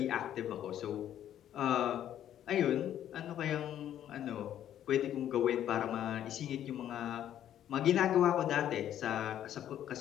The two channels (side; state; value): right; quieter; 11.0 dB